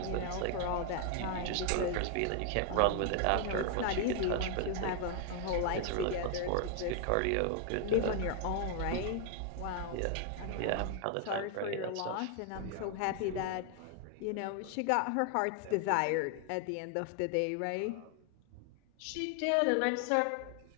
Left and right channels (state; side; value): different; both; correlation 0.00